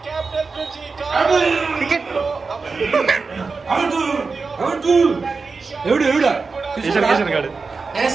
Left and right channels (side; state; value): left; quieter; 4.4 dB